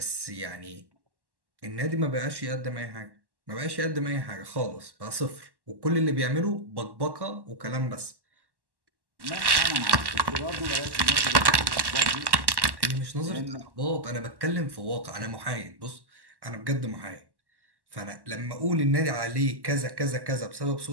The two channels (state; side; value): late; left; 1.1 ms